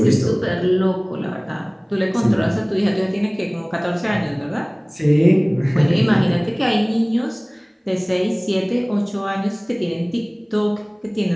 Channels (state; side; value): identical; both; correlation 1.00